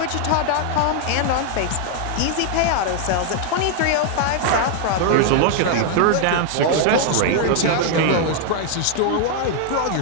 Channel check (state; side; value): different; both; correlation 0.00